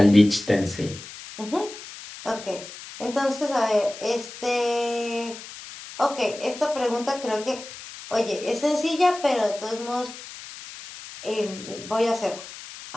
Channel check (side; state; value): left; noise; hiss, 14 dB below the sound